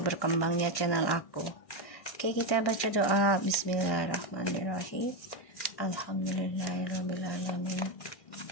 berkembangnya channel aku. Oke, kita baca doa. Bismillahirrahmanirrahim. Alhamdulillahirrahmanirrahim.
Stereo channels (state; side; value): late; right; 1.6 ms